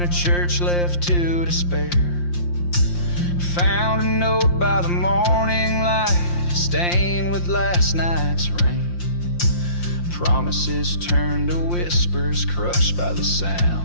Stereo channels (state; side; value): late; right; 5.7 ms